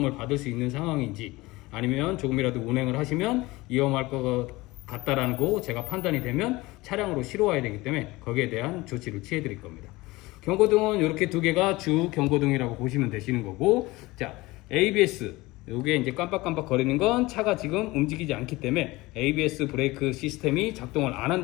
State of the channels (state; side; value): quieter; right; 20.8 dB